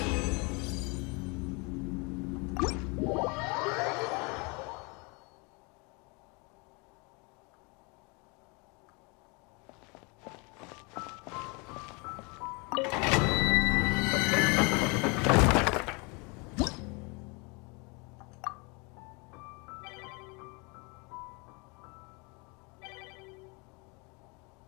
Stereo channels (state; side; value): quieter; right; 30.1 dB